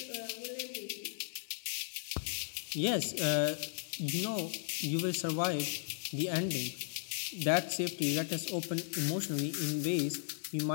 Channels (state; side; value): silent; right; 54 dB below the other